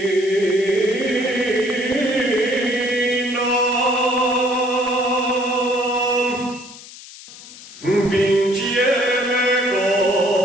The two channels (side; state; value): left; noise; hiss, 17 dB below the sound